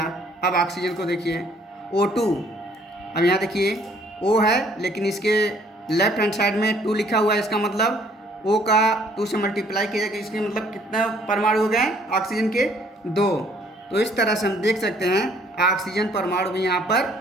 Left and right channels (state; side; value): normal; both; correlation 0.61